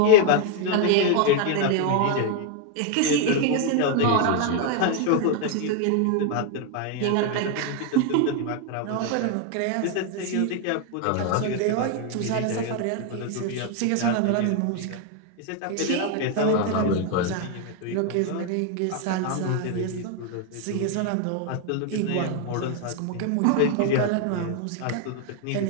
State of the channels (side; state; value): both; different; correlation 0.01